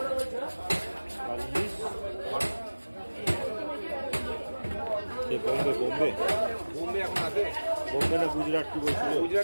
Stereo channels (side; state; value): both; inverted; correlation -1.00